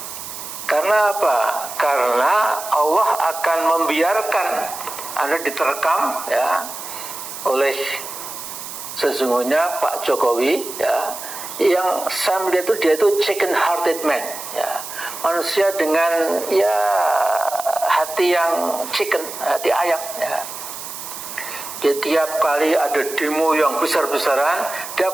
Karena apa? Karena Allah akan membiarkan Anda diterkam ya oleh sesungguhnya Pak Jokowi ya, yang saya melihat dia itu chicken hearted man ya, manusia dengan ya hati yang chicken, hati ayam ya. Dia tiap kali ada demo yang besar-besaran, dia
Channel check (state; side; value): noise; right; hiss, 10 dB below the sound